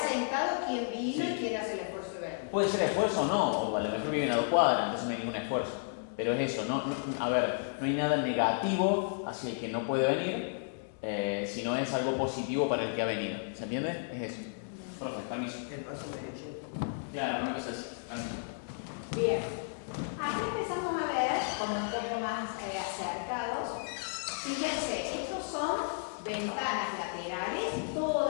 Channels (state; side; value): silent; right; digital silence